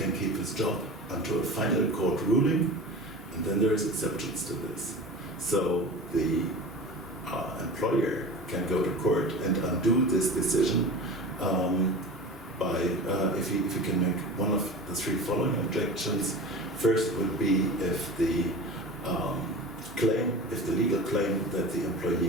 keep his job until a final court ruling, and then there is exceptions to this. So the employer can go to court and undo this decision by if he can make one of the three following objections. First would be if the legal claim that the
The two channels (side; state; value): both; normal; correlation 0.33